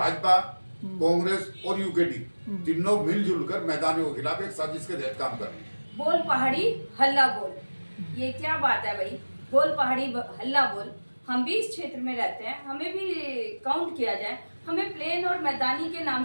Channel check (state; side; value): inverted; both; correlation -1.00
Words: कांग्रेस और यूकेडी, तीनों मिलजुल कर मैदानियों के खिलाफ एक साजिश के तहत काम कर रहे हैं। बोल पहाड़ी हल्ला बोल, ये क्या बात है भाई? बोल पहाड़ी हल्ला बोल। हम भी इस क्षेत्र में रहते हैं, हमें भी काउंट किया जाए, हमें प्लेन और मैदानी के